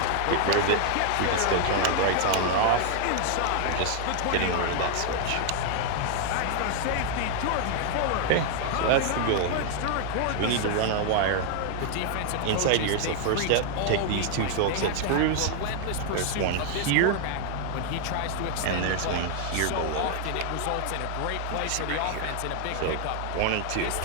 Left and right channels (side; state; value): both; different; correlation 0.00